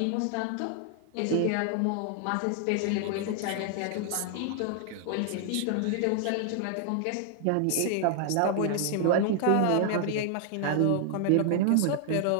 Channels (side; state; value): both; different; correlation 0.00